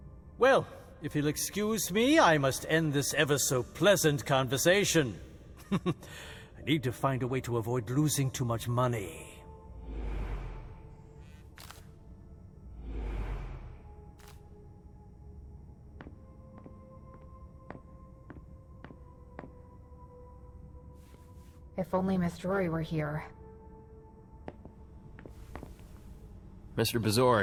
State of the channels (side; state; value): both; identical; correlation 1.00